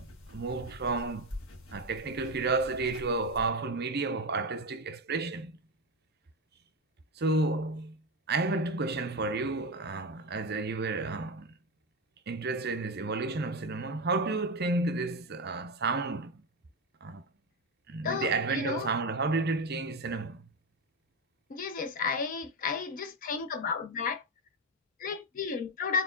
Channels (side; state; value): both; normal; correlation 0.14